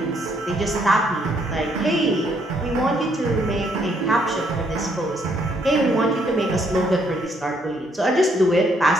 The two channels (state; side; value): normal; both; correlation 0.70